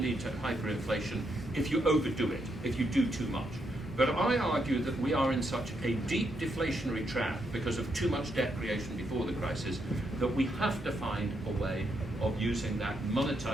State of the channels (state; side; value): normal; both; correlation 0.79